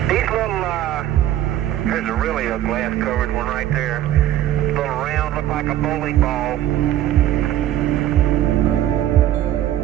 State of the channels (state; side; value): quieter; left; 12.5 dB